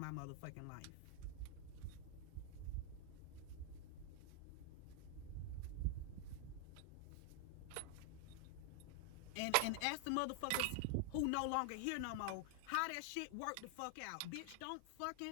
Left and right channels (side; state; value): both; different; correlation 0.00